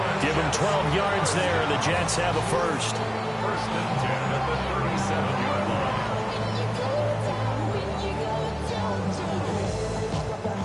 Give him 12 yards there, and the Jets have a first. 1st and 10 at the 37-yard line.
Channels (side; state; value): both; identical; correlation 1.00